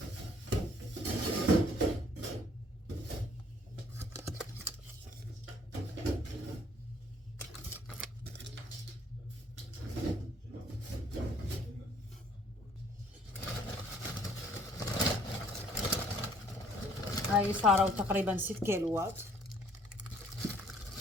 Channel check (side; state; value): both; normal; correlation 0.60